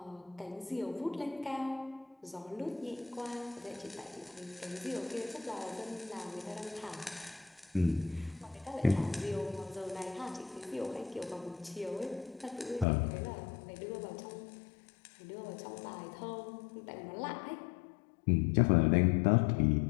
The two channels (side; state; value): right; drops out; at 12.9 s